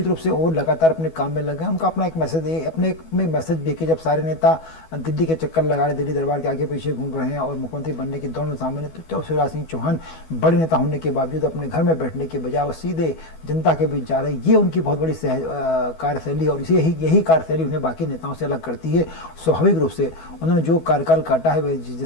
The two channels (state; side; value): late; right; 12 ms